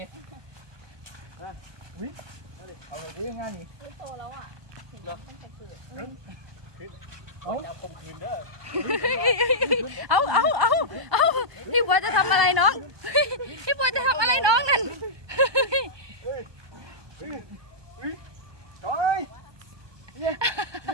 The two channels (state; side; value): late; left; 1.2 ms